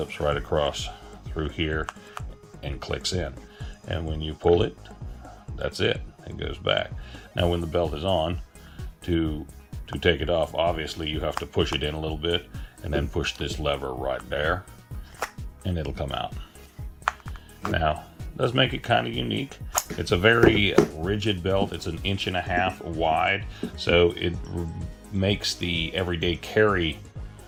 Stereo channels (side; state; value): both; identical; correlation 1.00